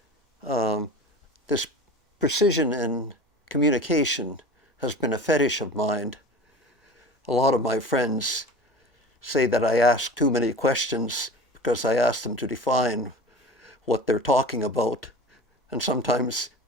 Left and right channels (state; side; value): normal; both; correlation 0.36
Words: this precision in communication has been a fetish of mine. A lot of my friends say that I ask too many questions because I ask them to define what they're talking about, and sometimes